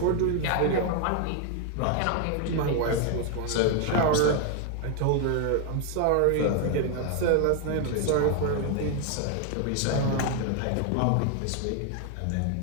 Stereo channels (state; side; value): different; both; correlation 0.00